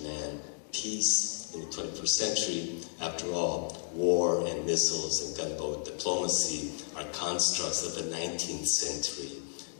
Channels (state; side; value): silent; right; digital silence